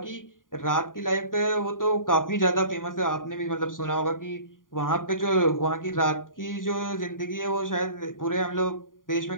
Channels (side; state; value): right; late; 0.89 ms